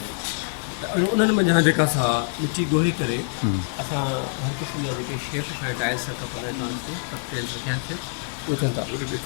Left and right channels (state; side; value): silent; right; digital silence